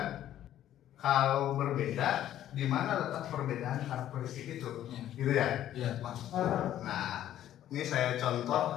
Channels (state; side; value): quieter; right; 12.0 dB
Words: Kalau berbeda, di mana letak perbedaan karakteristik itu, gitu ya? Iya. Nah, ini saya